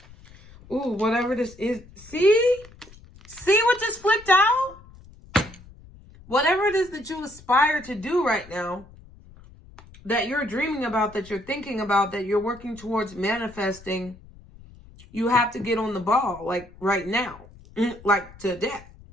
Ooh, whatever this is. See? See what just flipped out? Whatever it is that you aspire to do right now, that you're dreaming about, that you're thinking about, that you're working towards manifesting, you have to get on the ball, like right now. Like today.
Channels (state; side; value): noise; left; rumble, 22 dB below the sound